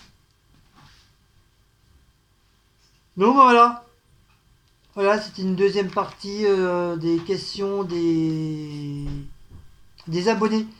Donc voilà. Voilà, c'était une deuxième partie des questions des abonnés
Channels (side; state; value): both; identical; correlation 1.00